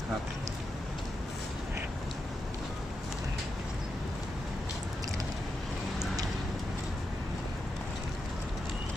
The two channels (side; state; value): both; normal; correlation 0.87